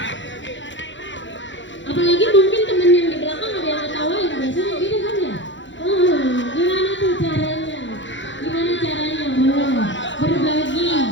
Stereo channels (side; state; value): right; late; 0.54 ms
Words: Apalagi mungkin temen yang di belakang ada yang ngetawain, biasanya gitu kan ya? Gimana tuh caranya? Gimana caranya? Boleh berbagi.